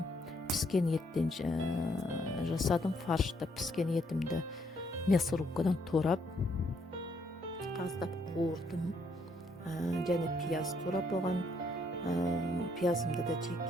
Піскен еттен жасадым. Фаршты піскен етімді мясорубкадан турап, қаздап қуырдым. Және пияз турап, оған пиязымды да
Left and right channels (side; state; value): both; normal; correlation 0.71